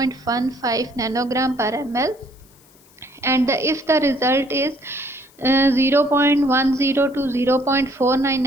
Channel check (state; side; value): noise; left; hiss, 29 dB below the sound